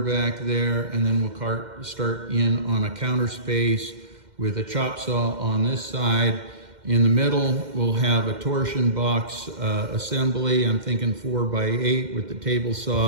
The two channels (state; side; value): late; left; 2.1 ms